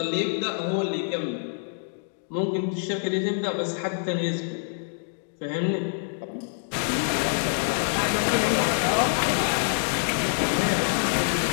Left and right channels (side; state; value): right; silent; digital silence